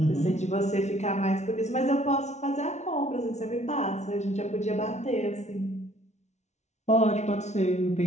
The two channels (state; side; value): late; right; 0.32 ms